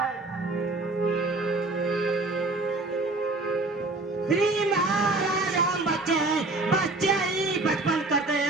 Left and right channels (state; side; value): quieter; left; 3.1 dB